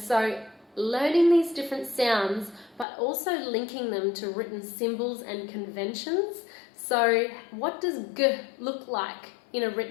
learning these different sounds but also linking them to written symbols and conventions. So what does g look like in a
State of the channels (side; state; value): right; drops out; at 2.9 s